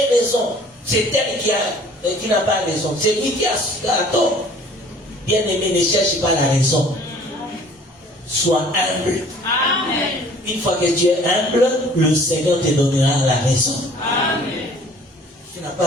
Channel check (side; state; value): both; normal; correlation 0.52